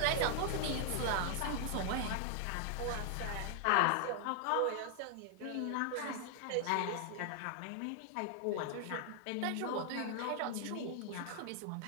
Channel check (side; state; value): both; different; correlation 0.00